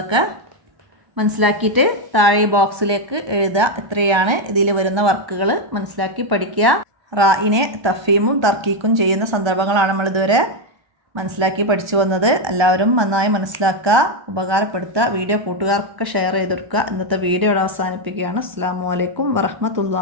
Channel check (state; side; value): late; left; 1.3 ms